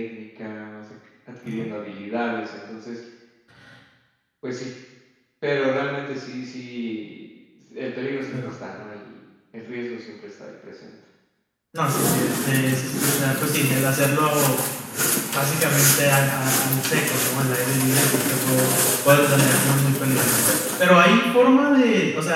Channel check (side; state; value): both; identical; correlation 1.00